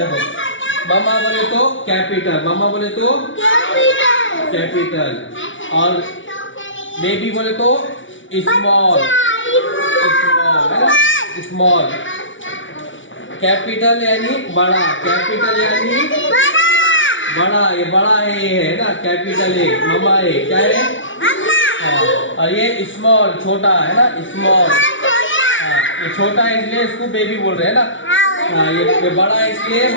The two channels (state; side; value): late; right; 0.56 ms